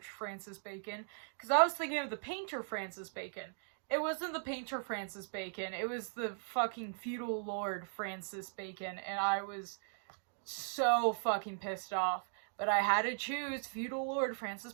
Francis Bacon, because I was thinking of the painter Francis Bacon. It wasn't the painter Francis Bacon, it was the fucking feudal lord Francis Bacon, and I was so fucking pissed off. But I had to choose feudal lord Francis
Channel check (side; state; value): left; silent; digital silence